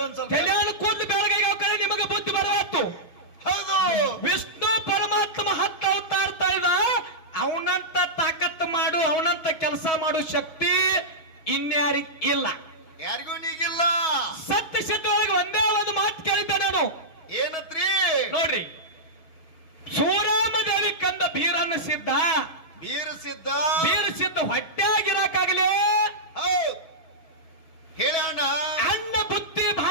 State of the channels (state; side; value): late; right; 6.3 ms